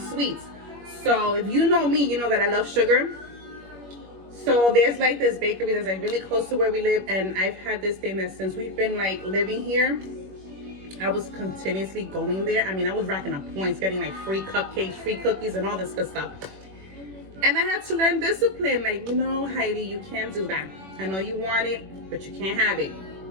So if you know me, you know that I love sugar. So there's like this bakery that's like really close to where we live, and I've had this thing that since we've been like living here, I was continuously going there. I mean, I was racking up points, getting like free cupcakes, free cookies, and all this good stuff. And I had to learn discipline. Like, you know, Heidi, you can't do that. I know you want it, but you can't have it.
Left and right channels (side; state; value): left; late; 21 ms